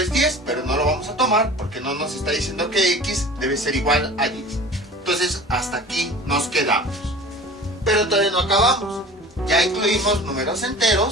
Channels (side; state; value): both; normal; correlation 0.40